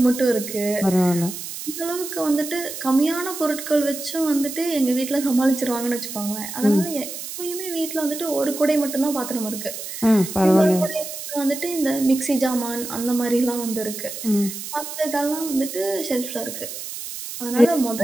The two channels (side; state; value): right; noise; hiss, 9 dB below the sound